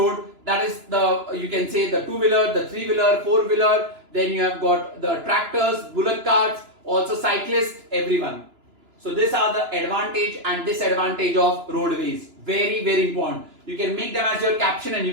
That is you can say the two-wheeler, the three-wheeler, four-wheeler. Then you have got the tractors, bullock carts, also cyclists, everyone. So these are the advantage and disadvantage of roadways. Very, very important. You can make them as your caption and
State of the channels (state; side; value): late; left; 2.9 ms